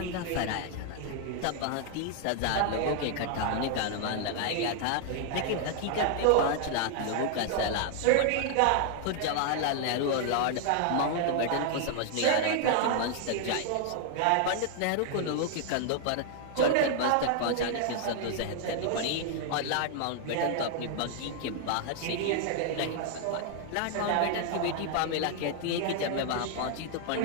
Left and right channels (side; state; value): both; different; correlation 0.00